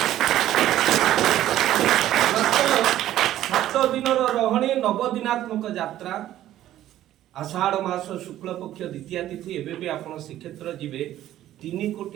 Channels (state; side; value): quieter; left; 13.1 dB